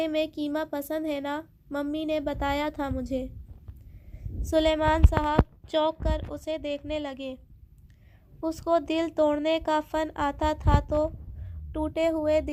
میں قیمہ پسند ہے نا؟ ممی نے بتایا تھا مجھے۔ سلیمان صاحب چونک کر اسے دیکھنے لگے۔ اس کو دل توڑنے کا فن آتا تھا تو ٹوٹے ہوئے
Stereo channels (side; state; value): both; identical; correlation 1.00